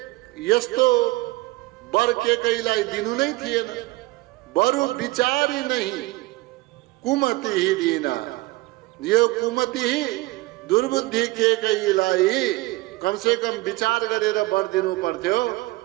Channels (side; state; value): left; quieter; 20.8 dB